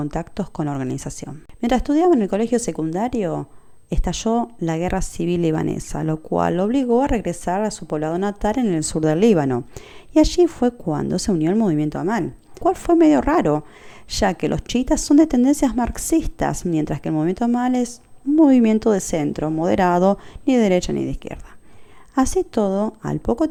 con la organización. Mientras estudiaba en el colegio secundario, estalló la guerra civil libanesa, lo cual lo obligó a regresar a su poblado natal en el sur del Líbano. Y allí fue cuando se unió al movimiento Amal, cual fue medio raro, ya que los chiitas son de tendencias marxistas, mientras que el movimiento Amal es un movimiento de centro, moderado, ni de derecha ni de izquierda. Así todo, al poco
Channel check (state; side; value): identical; both; correlation 1.00